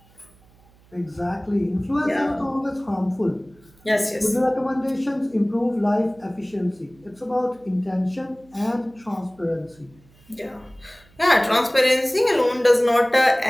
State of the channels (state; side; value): noise; right; hum, 29 dB below the sound